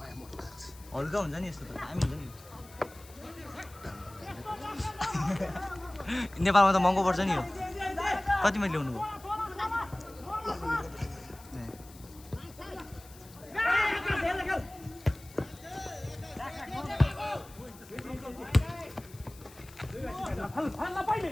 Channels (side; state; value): left; noise; hiss, 21 dB below the sound